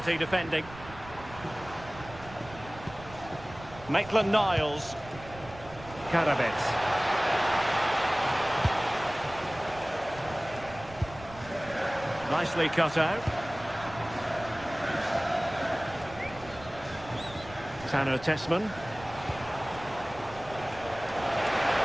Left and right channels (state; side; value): noise; right; rumble, 17 dB below the sound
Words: defending. Maitland-Niles. Karabets. Nicely cut out. Tanner Tessman.